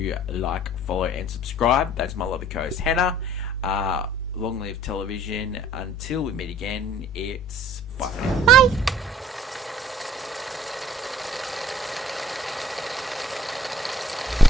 like, follow, and subscribe. That's my lovely co-host Hannah. Long live television. Until we meet again, it's bye for now. Bye.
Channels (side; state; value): both; normal; correlation 0.56